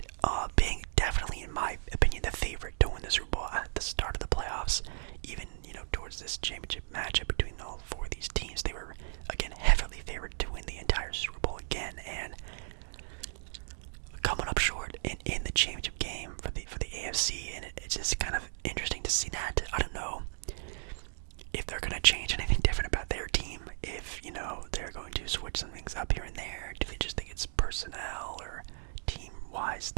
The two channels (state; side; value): silent; left; digital silence